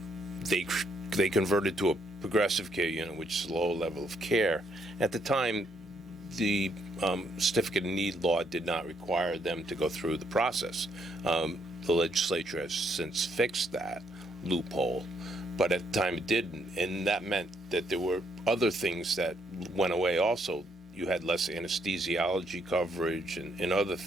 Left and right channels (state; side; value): normal; both; correlation 0.72